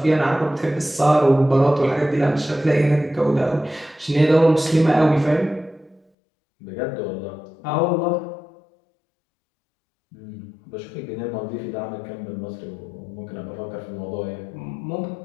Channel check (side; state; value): right; drops out; at 6.0 s